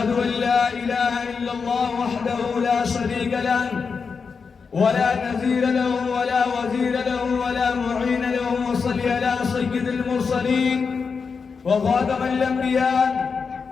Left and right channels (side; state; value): right; quieter; 5.4 dB